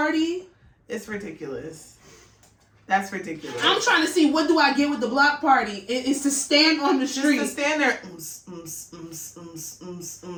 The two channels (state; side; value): identical; both; correlation 1.00